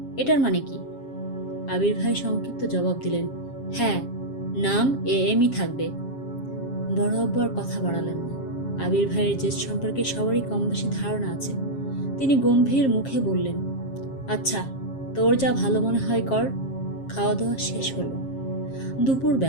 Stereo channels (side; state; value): right; late; 7.4 ms